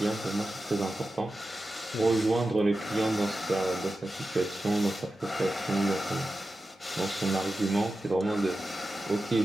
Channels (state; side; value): normal; both; correlation 0.92